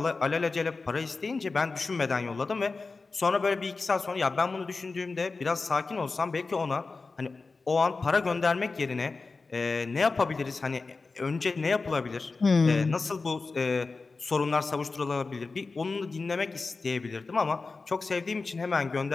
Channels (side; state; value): right; quieter; 4.0 dB